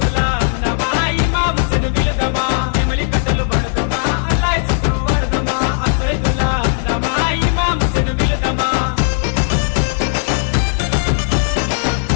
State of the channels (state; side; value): silent; right; 60 dB below the other